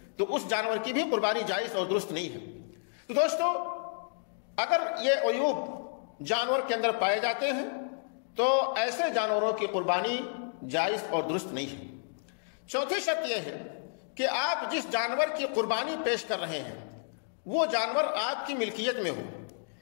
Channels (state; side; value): silent; right; digital silence